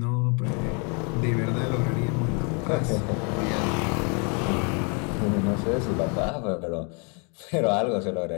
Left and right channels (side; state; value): right; quieter; 35.4 dB